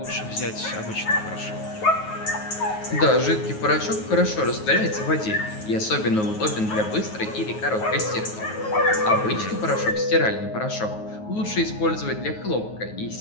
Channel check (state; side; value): late; right; 9.4 ms